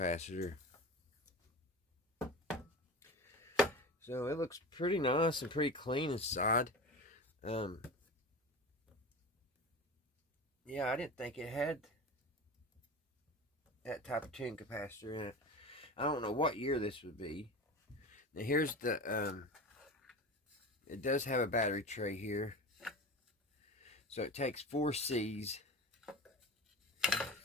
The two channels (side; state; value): both; normal; correlation 0.30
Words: So it looks pretty nice and pretty clean inside. Yeah, I didn't think it had that type of tuning capacitor in it. I don't know what year this would be. Now here's the it does have a battery tray here. So it takes 4 C's.